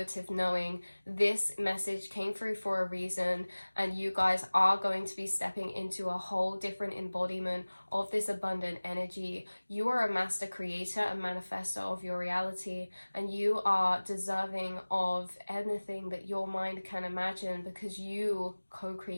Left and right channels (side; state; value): both; inverted; correlation -1.00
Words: knowing. This message came through for a reason, and you guys are going to be stepping into a whole different embodiment of this abundant energy. You are a master creator and manifestor of your reality, and you are deserving of anything that your mind can imagine because you